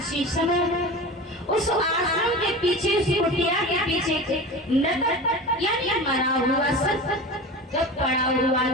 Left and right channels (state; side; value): normal; both; correlation 0.31